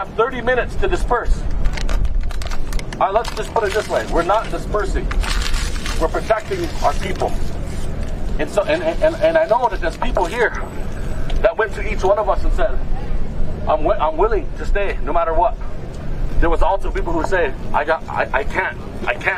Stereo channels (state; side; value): identical; both; correlation 1.00